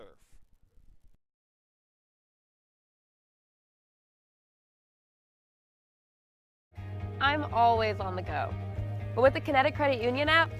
I'm always on the go. But with the Kinetic Credit Union app,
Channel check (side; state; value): both; identical; correlation 1.00